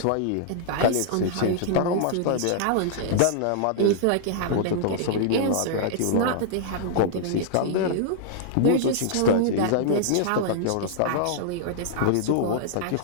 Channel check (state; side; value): different; both; correlation -0.01